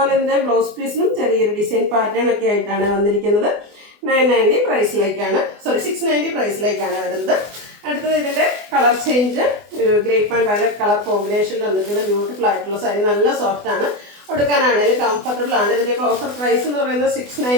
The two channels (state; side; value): late; left; 24 ms